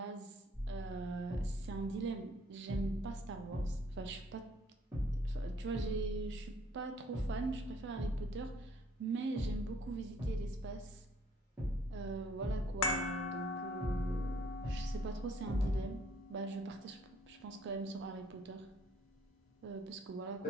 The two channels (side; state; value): both; normal; correlation 0.62